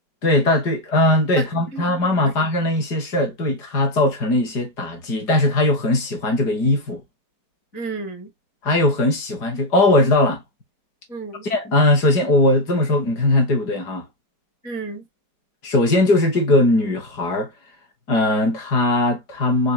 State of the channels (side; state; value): right; late; 4.9 ms